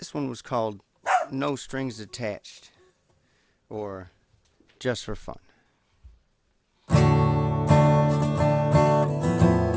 this one was called No Strings Attached, or Just for Fun.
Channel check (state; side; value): identical; both; correlation 1.00